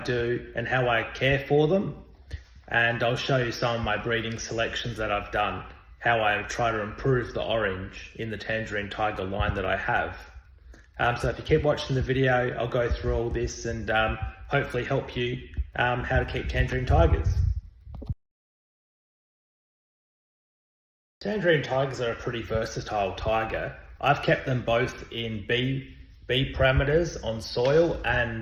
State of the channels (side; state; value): both; identical; correlation 1.00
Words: and how I care for them. And I'll show you some of my breeding selections that I've done, how I try to improve the orange in the tangerine tiger line that I have. So if you keep watching the video, I'll go through all this and hopefully help you how to keep tangerine tigers. Tangerine tigers are a pretty versatile tiger. I've kept them both in B parameters on soil